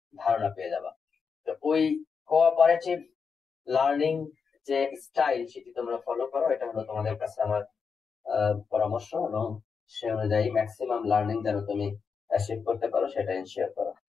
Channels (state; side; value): quieter; right; 5.7 dB